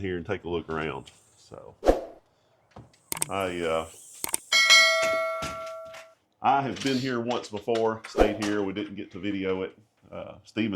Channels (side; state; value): both; identical; correlation 1.00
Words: and take a look around. So I have been here once before, stayed here. We didn't get to video it.